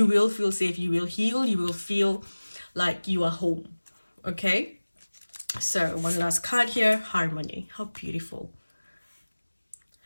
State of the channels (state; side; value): inverted; both; correlation -1.00